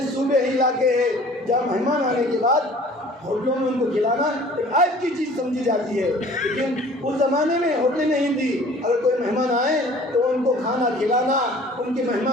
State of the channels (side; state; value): both; normal; correlation 0.49